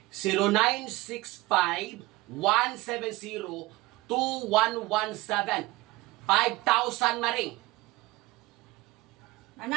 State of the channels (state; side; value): quieter; left; 20.1 dB